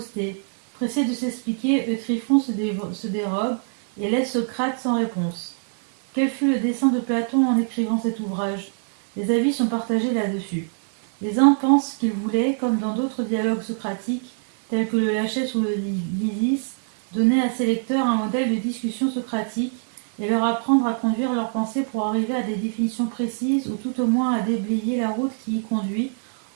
Pressé de s'expliquer, Eutyphron se dérobe et laisse Socrate sans réponse. Quel fut le dessein de Platon en écrivant cet ouvrage? Les avis sont partagés là-dessus. Les uns pensent qu'ils voulaient, comme dans d'autres dialogues socratiques, tels que le Lachès ou le Lysis, donner à ses lecteurs un modèle de discussion socratique et leur apprendre à conduire leurs pensées pour arriver à des définitions précises ou tout au moins à déblayer la route qui y conduit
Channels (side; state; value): left; silent; 63 dB below the other